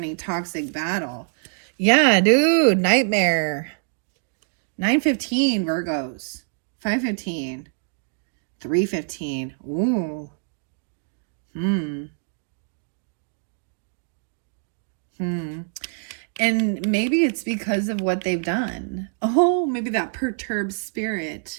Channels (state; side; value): silent; left; digital silence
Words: toxic battle. Yeah, dude, nightmare. 9-15, Virgos. 5-15. 3-15. Ooh. And maybe it's because of what they've done. Oh, maybe that perturbed spirit.